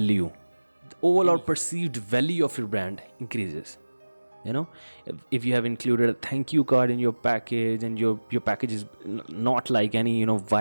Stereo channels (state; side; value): inverted; both; correlation -1.00